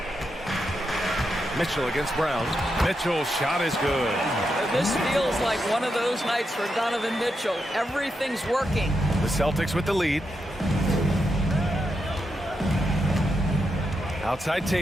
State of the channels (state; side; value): normal; both; correlation 0.85